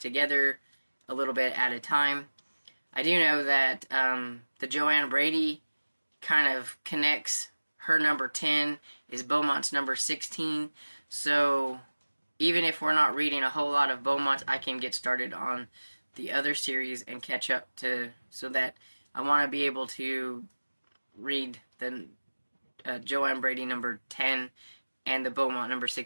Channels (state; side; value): inverted; both; correlation -1.00